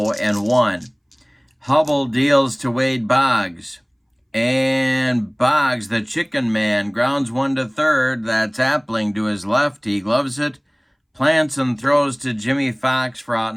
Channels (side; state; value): both; identical; correlation 1.00